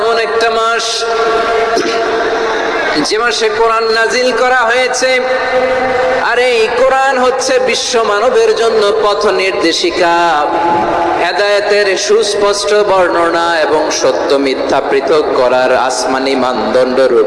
এমন একটা মাস যে মাসে কোরআন নাজিল করা হয়েছে, আর এই কোরআন হচ্ছে বিশ্ব মানবের জন্য পথ নির্দেশিকা, হেদায়েতের সুস্পষ্ট বর্ণনা এবং সত্য মিথ্যা পৃথক করার আসমানি মানদণ্ড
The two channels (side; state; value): both; identical; correlation 1.00